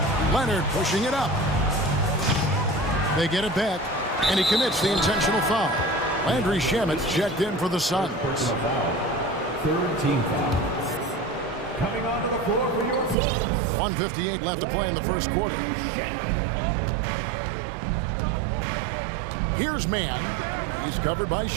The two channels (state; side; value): drops out; left; at 13.2 s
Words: Leonard pushing it up. They get it back. And he commits the intentional foul. Landry Shamet's checked in for the Suns. Third team foul. Coming onto the floor for your Suns. 1:58 left to play in the first quarter. Here's Man. He's covered by